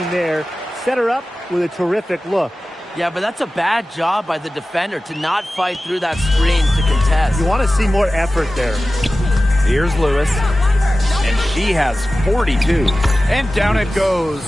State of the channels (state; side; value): normal; both; correlation 0.95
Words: there. Set her up with a terrific look. Yeah, but that's a bad job by the defender to not fight through that screen to contest. You want to see more effort there. Here's Lewis. And she has 42. And down it goes.